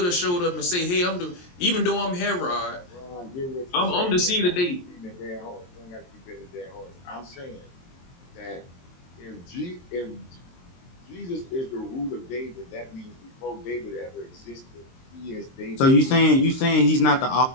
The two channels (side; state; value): right; late; 23 ms